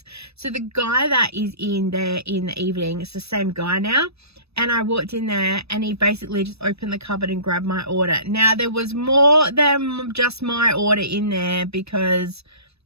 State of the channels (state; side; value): late; left; 0.78 ms